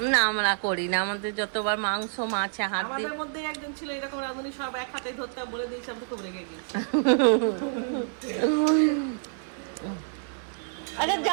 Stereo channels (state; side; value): silent; left; 59 dB below the other